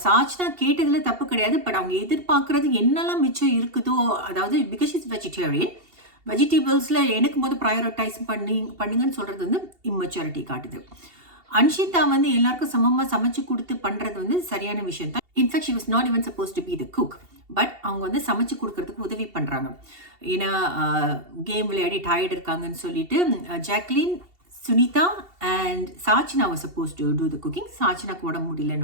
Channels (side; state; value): left; late; 2.7 ms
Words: சாச்சனா கேட்டதுல தப்பு கிடையாது, பட் அவங்க எதிர்பார்க்கறது என்னெல்லாம் மிச்சம் இருக்குதோ, அதாவது பிகாஸ் இஸ் வெஜிடேரியன், வெஜிடபிள்ஸில் எனக்கு ப்ரையாரிட்டைஸ் பண்ணுங்கன்னு சொல்கிறது வந்து இம்மெச்சூரிட்டி காட்டுது. அன்ஷிதா வந்து எல்லாருக்கும் சமமாக சமைச்சு கொடுத்து பண்ணுறது வந்து சரியான விஷயம் தான். In fact she was not even suppose to be the cook, but அவங்க வந்து சமைச்சு கொடுக்கறதுக்கு உதவி பண்ணுறாங்க. ஏன்னா கேம் விளையாடி டயர்டு இருக்காங்கன்னு சொல்லிட்டு Jacquline, Sunitha and Sachana was supposed to do the cooking. சாச்சனாக்கு உடம்பு